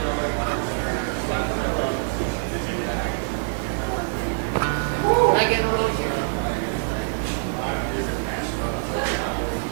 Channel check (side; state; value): left; silent; 62 dB below the other